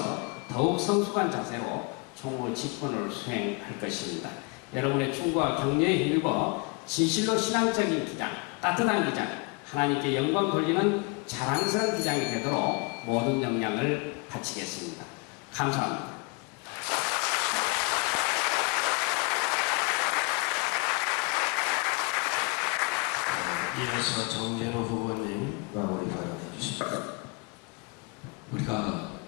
더욱 성숙한 자세로 총무 직분을 수행할 것입니다. 여러분의 충고와 격려에 힘입어 진실로 신앙적인 기장, 따뜻한 기장, 하나님께 영광 돌리는 자랑스러운 기장이 되도록 모든 역량을 바치겠습니다. 감사합니다. 이어서 정진호 후보님 마무리 발언해 주십시오. 우리가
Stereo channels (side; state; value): right; quieter; 31.6 dB